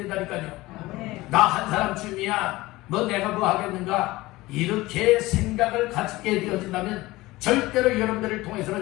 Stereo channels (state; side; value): quieter; right; 19.3 dB